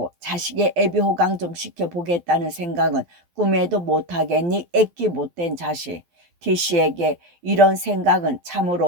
자식의 애비 호강 좀 시켜보겠다는 생각은 꿈에도 못하겠니? 애끼 못된 자식. 티씨에게 이런 생각은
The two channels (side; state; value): left; late; 12 ms